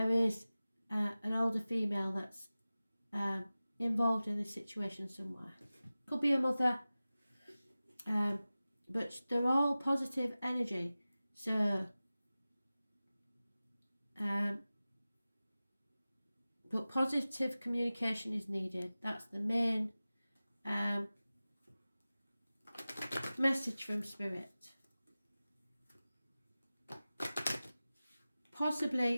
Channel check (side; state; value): both; inverted; correlation -0.97